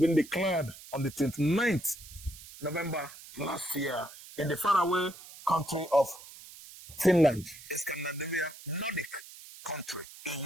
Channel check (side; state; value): right; noise; hiss, 17 dB below the sound